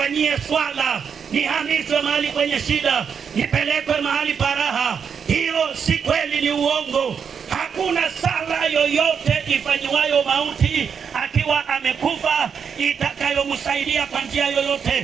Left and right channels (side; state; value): left; quieter; 6.8 dB